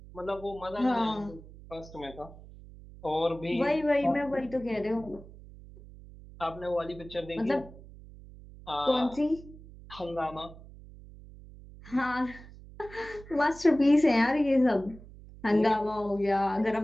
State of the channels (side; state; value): right; noise; hum, 18 dB below the sound